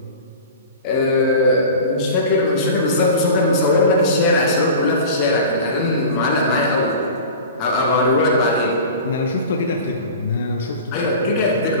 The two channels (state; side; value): inverted; both; correlation -0.36